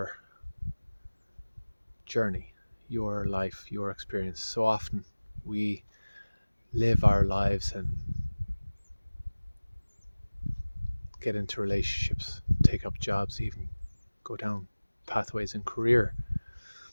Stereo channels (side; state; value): both; inverted; correlation -1.00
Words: journey, your life, your experience. So often we live our lives and get into relationships, take up jobs, even go down pathways in career